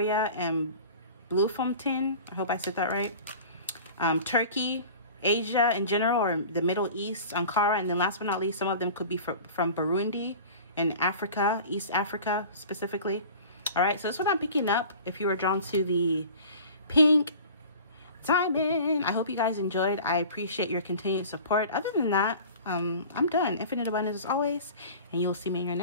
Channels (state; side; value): inverted; both; correlation -0.41